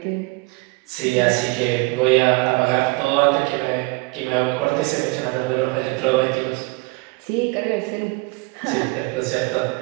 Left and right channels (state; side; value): quieter; left; 26.3 dB